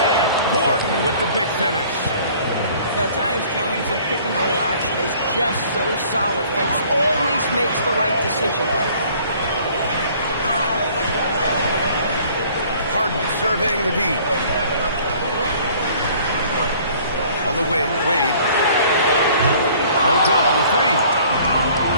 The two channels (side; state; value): both; inverted; correlation -0.54